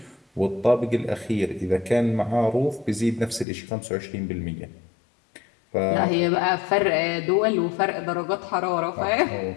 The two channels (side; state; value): right; drops out; at 3.5 s